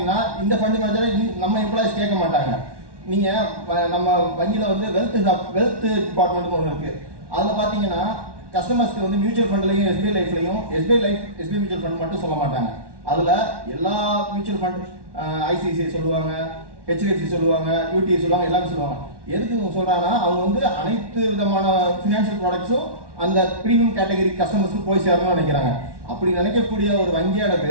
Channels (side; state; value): left; late; 1.1 ms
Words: இந்த ஃபண்ட் மேனேஜரை நம்ம எம்ப்ளாயிஸ் கேட்க மாட்டாங்க. நீங்கள் நம்ம வங்கியில் வந்து வெல்த் டிபார்ட்மெண்ட்னு ஒன்று இருக்குது. அதில் பார்த்தீங்கன்னா கஸ்டமர்ஸ்க்கு வந்து மியூச்சுவல் ஃபண்ட்லையும் எஸ்பிஐ லைஃப்லையும் எஸ்பிஐ மியூச்சுவல் ஃபண்ட் மட்டும் சொல்ல மாட்டாங்க. அதில் எல்லா மியூச்சுவல் ஃபண்ட் ஐசிஐசிஐ சொல்லுவாங்க, ஹெச்டிஎஃப்சி சொல்லுவாங்க, யூடிஐ சொல்லுவாங்க, எல்லாமே சொல்லுவாங்க. எதுக்கு சொல்கிறாங்கன்னா, அவங்க வந்து அனைத்து விதமான ஃபினான்ஷியல் ப்ராடக்ட்ஸும் அந்த ப்ரீமியம் கேட்டகரி கஸ்டமர்ஸ்க்கு போய் சேரணும்னு நினைக்கிறாங்க. அப்படி நினைக்கக்கூடிய ஒரு வங்கியானது